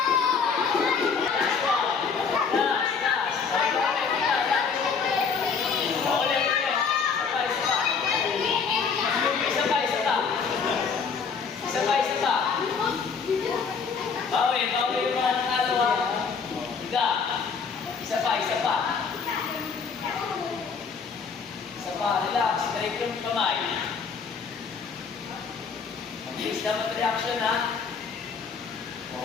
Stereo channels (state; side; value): quieter; right; 5.6 dB